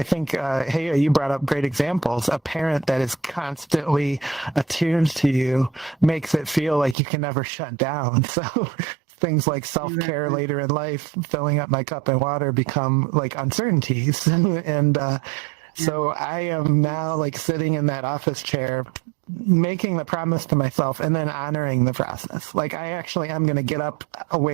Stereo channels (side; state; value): left; drops out; at 7.0 s